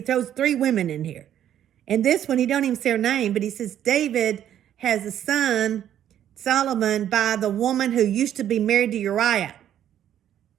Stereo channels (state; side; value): quieter; left; 10.7 dB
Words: 3 women in here. And this one, he don't even say her name, but he says David has a son, Solomon, by the woman who used to be married to Uriah.